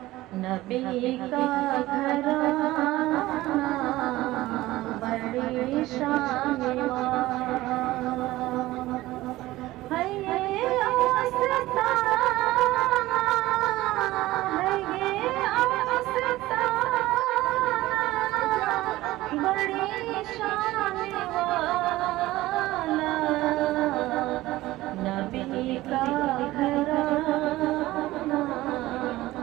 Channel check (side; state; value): left; quieter; 17.3 dB